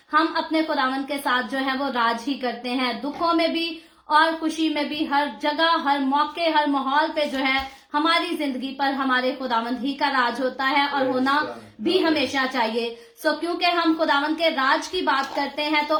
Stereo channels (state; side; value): identical; both; correlation 1.00